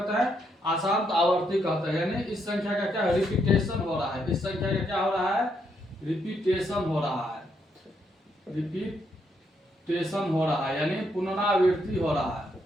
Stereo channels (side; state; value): both; normal; correlation 0.76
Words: हैं, अशांत आवर्ती कहते हैं। यानी इस संख्या का क्या, रिपीटेशन हो रहा है। इस संख्या का क्या हो रहा है, रिपीटेशन हो रहा है, रिपीटेशन हो रहा है, यानी पुनरावृत्ति हो रहा है।